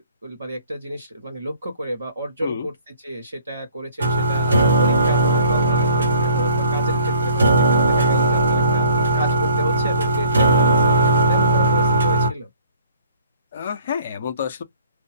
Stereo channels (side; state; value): both; inverted; correlation -0.55